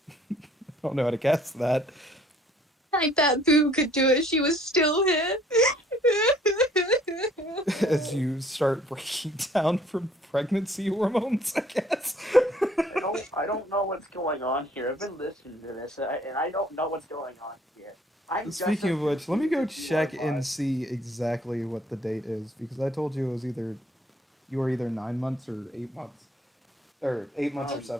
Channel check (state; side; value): normal; both; correlation 0.59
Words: I don't know how to cast that." I bet Boo could do it. She was still here. As you start breaking down from pregnancy hormones, I guess. I don't know what's going on here. I've been listening to this, and I don't know what's going on here. Speaking of which, let me go check and see exactly what the date is, because I told you it was you were either 9 months or 8 months, or 8 months or